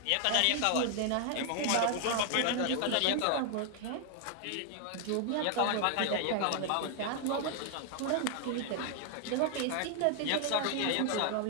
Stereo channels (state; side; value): different; both; correlation 0.00